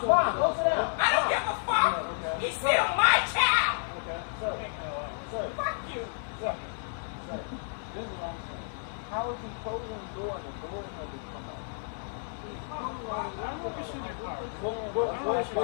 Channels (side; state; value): right; silent; 57 dB below the other